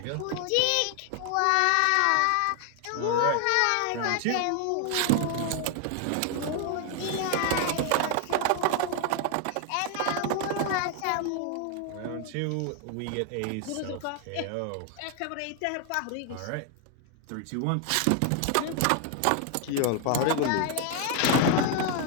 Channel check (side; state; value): both; different; correlation 0.00